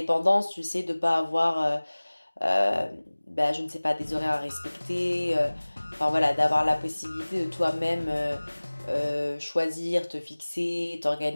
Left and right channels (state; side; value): inverted; both; correlation -1.00